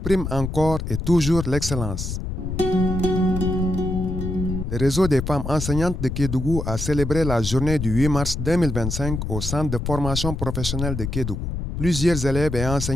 prime encore et toujours l'excellence. Le réseau des femmes enseignantes de Kédougou a célébré la journée du 8 mars 2025 au centre de formation professionnelle de Kédougou. Plusieurs élèves et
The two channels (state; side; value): noise; left; rumble, 4 dB below the sound